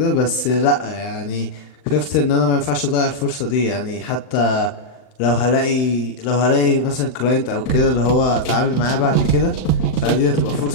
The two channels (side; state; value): right; late; 39 ms